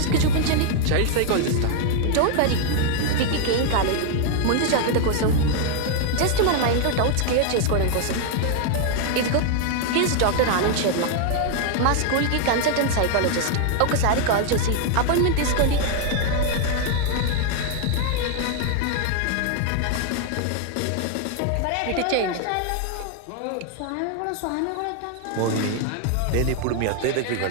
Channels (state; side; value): different; both; correlation 0.00